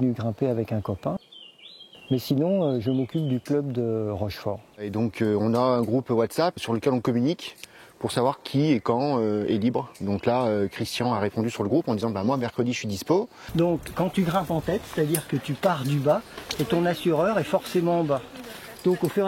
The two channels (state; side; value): identical; both; correlation 1.00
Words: grimper avec un copain. Mais sinon, je m'occupe du club de Rochefort. Et donc, on a un groupe WhatsApp sur lequel on communique pour savoir qui et quand est libre. Donc là, Christian a répondu sur le groupe en disant moi, mercredi, je suis dispo. Donc, quand tu grimpes en tête, c'est-à-dire que tu pars du bas et ton assureur est forcément en bas. Donc, au fur